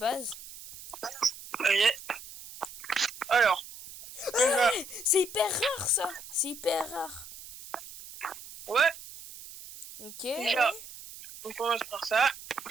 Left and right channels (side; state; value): right; noise; hiss, 15 dB below the sound